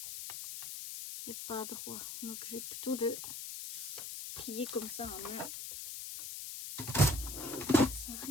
est pas droit. Donc je vais plutôt le plier comme ça en main. Ça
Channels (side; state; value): left; noise; hiss, 7 dB below the sound